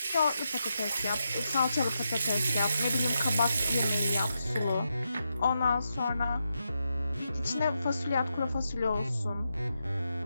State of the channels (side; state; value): both; inverted; correlation -0.85